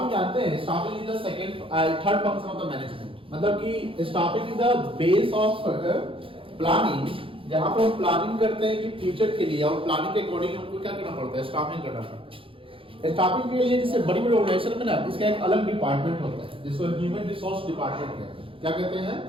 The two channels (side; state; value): left; late; 0.26 ms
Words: जानते हैं, staffing is the third function of the management. मतलब कि staffing is the base of planning, जहां पर हम प्लानिंग करते हैं कि फ्यूचर के लिए, और प्लानिंग के अकॉर्डिंग हमको क्या करना पड़ता है, स्टाफिंग करना पड़ता है। स्टाफिंग के लिए जैसे बड़ी बड़ी ऑर्गेनाइजेशन में ना इसका एक अलग डिपार्टमेंट होता है जिसको ह्यूमन रिसोर्स डिपार्टमेंट कहते हैं। क्या कहते हैं?